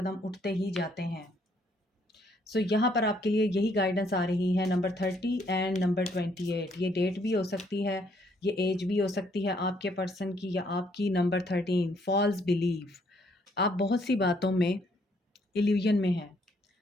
उठते ही जाते हैं। सो यहाँ पर आपके लिए यही गाइडेंस आ रही है, नंबर 30 एंड नंबर 28। ये डेट भी हो सकती है, ये एज भी हो सकती है आपके पर्सन की या आपकी। Number 13, false believe. आप बहुत सी बातों में इल्यूजन में हैं,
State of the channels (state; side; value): normal; both; correlation 0.68